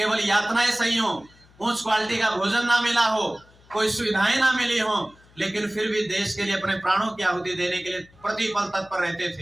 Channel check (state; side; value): noise; left; hum, 28 dB below the sound